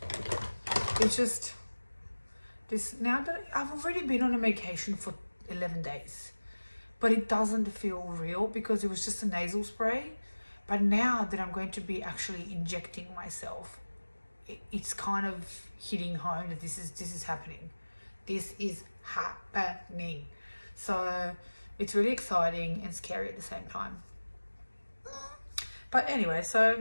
It's just this, now that I've already been on a medication for 11 days, but it doesn't feel real because it was just a nasal spray. But now that I'm going to be actually injecting myself, it's kind of hitting home that this is happening. This is happening. So it's really exciting and scary at the same time. But anyway,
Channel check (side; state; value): both; inverted; correlation -1.00